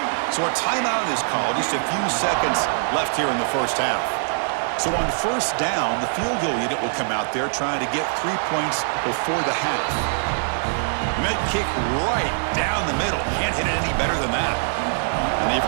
So a timeout is called. Just a few seconds left here in the first half. So on first down, the field goal unit will come out there trying to get 3 points before the half. And that kick right down the middle. Can't hit it any better than that. And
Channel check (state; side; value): silent; left; digital silence